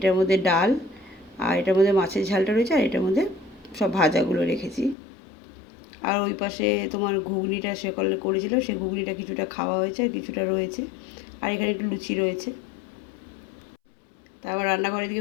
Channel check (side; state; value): right; drops out; at 5.0 s